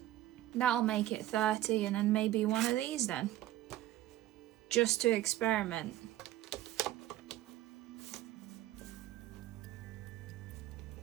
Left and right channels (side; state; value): left; quieter; 14.4 dB